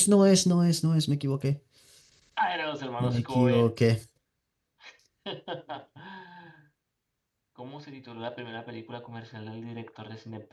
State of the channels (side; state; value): both; identical; correlation 1.00